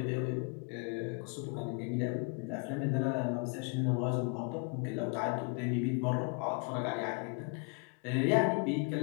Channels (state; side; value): quieter; right; 36.6 dB